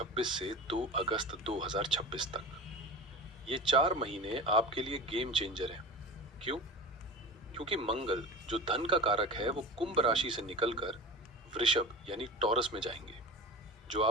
से 2 अगस्त 2026 तक। ये 4 महीने आपके लिए गेम चेंजर हैं। क्यों? क्योंकि मंगल, जो धन का कारक है, वो कुंभ राशि से निकलकर वृषभ यानी टॉरस में जाएंगे, जो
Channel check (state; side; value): normal; both; correlation 0.32